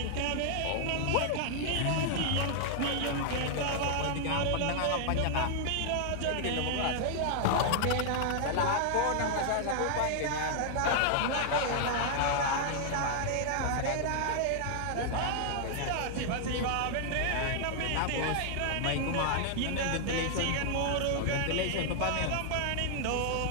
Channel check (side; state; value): both; different; correlation 0.00